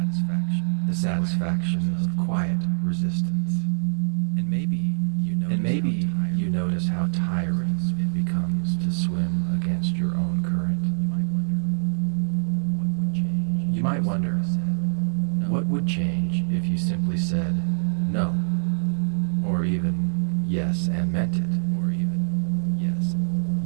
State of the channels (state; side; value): silent; left; digital silence